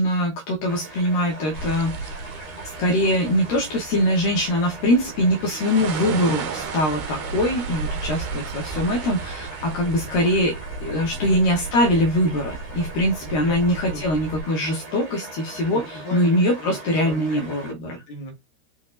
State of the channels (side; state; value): right; late; 13 ms